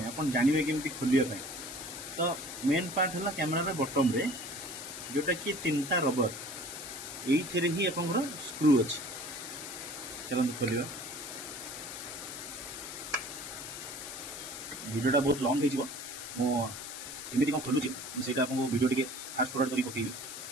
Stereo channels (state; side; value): noise; left; hiss, 9 dB below the sound